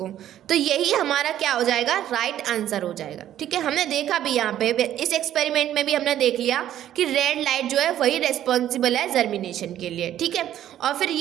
तो यही हमारा क्या हो जाएगा, राइट आंसर हो जाएगा, ठीक है। हमने देखा भी यहाँ पे इस एक्सपेरिमेंट में भी हमने देख लिया कि रेड लाइट जो है वही रेस्पॉन्सिबल है जर्मिनेशन के लिए, ठीक है। और फिर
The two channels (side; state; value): left; quieter; 11.8 dB